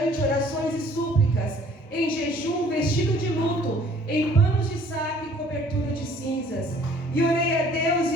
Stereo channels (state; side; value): normal; both; correlation 0.55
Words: orações e súplicas, em jejum, vestido de luto, em panos de saco e cobertura de cinzas. E orei a Deus